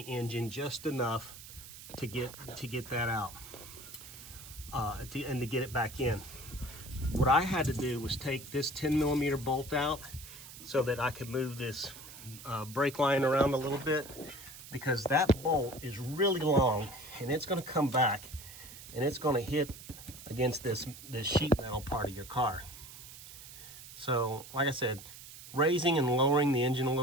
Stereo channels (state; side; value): noise; right; hiss, 15 dB below the sound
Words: engine just enough to get that out, and to get it back in. What I had to do was take this 10 millimeter bolt out so that I could move this brake line around a little bit, because that bolt is really long and it's going to come back and it's going to hit against this sheet metal part of your car. So like I said, raising and lowering the engine a